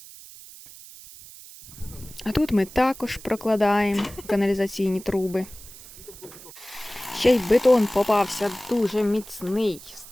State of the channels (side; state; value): right; noise; hiss, 18 dB below the sound